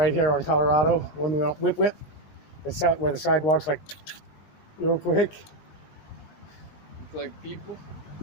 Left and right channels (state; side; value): late; right; 19 ms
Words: here on Colorado, when we went whip, where the sidewalk's like real quick. It's like people.